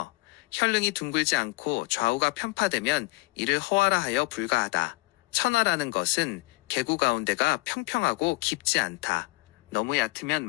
혈릉이 둥글지 않고 좌우가 편파되면 이를 허화라 하여 불가하다. 천화라는 것은 계구 가운데가 평평하고 깊지 않다. 너무 얕으면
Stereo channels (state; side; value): quieter; right; 22.4 dB